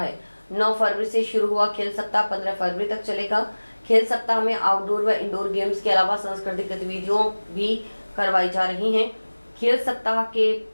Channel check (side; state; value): both; inverted; correlation -1.00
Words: 9 फरवरी से शुरू हुआ खेल सप्ताह 15 फरवरी तक चलेगा। खेल सप्ताह में आउटडोर व इंडोर गेम्स के अलावा सांस्कृतिक गतिविधियों भी करवाई जा रही हैं। खेल सप्ताह के